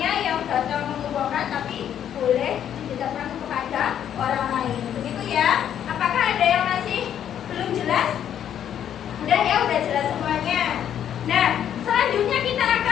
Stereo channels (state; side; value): quieter; right; 9.8 dB